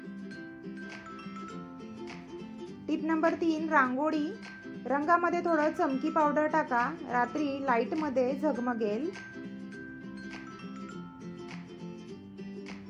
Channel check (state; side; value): identical; both; correlation 1.00